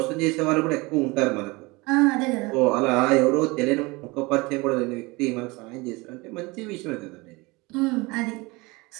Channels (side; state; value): left; quieter; 24.5 dB